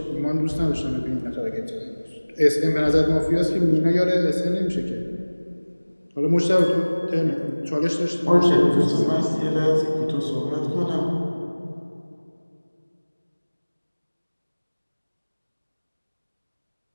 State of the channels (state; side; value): inverted; both; correlation -1.00